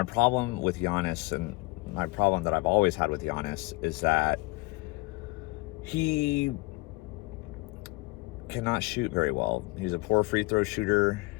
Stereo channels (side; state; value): right; quieter; 24.1 dB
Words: problem with Giannis, and my problem that I've always had with Giannis, is that he cannot shoot very well. He's a poor free throw shooter,